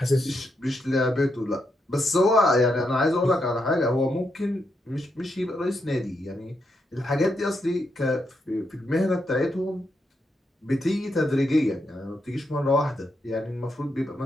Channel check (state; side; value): normal; both; correlation 0.81